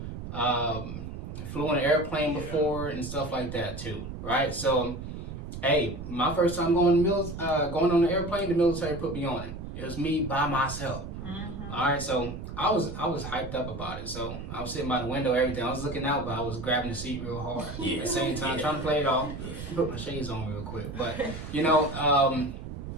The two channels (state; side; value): noise; right; rumble, 8 dB below the sound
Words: flew on an airplane before and stuff like that too, right? So, hey, my first time going on the airplane, the military put me on it. It was me by myself. All right, so I was hyped up about it. So I was sitting by the window, everything. I was looking out, but I was grabbing the seat real hard. At the same time, trying to play it off. Put my shades on real quick. But you know,